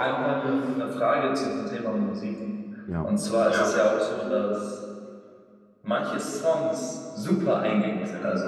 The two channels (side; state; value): both; identical; correlation 1.00